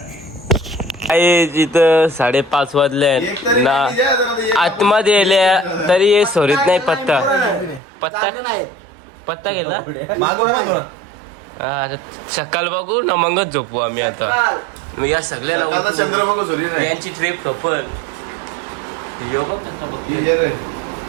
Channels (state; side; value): drops out; left; at 7.8 s